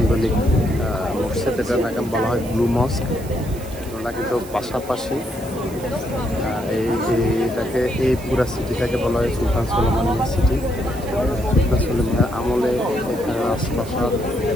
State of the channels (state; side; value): noise; right; hiss, 18 dB below the sound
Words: মসজিদ, এটার নাম বলা হয় ব্লু মস্ক। ওরা কিন্তু পাশাপাশি এই পুরা সিটিটাকে বলা হয় সুলতান সুলেমানিয়া সিটি। সুলতান সুলেমানের আমলে এখানে আশপাশার